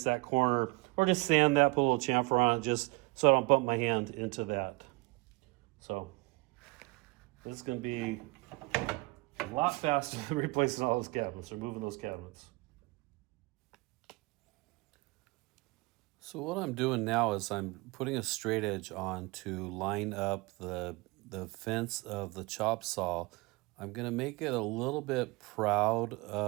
that corner or just sand that, put a little chamfer on it just so I don't bump my hand into that. So this is going to be a lot faster than replacing all those cabinets or moving those cabinets. So what I'm doing now is I'm putting a straight edge on to line up the fence of the chop saw. I'm going to make it a little bit proud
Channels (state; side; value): quieter; left; 24.4 dB